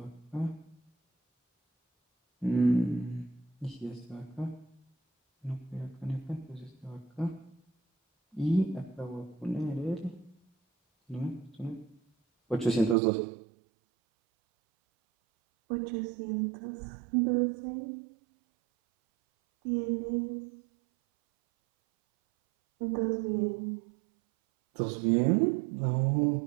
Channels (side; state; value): left; drops out; at 13.0 s